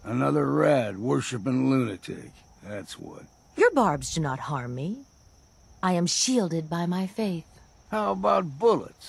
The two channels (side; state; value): both; identical; correlation 1.00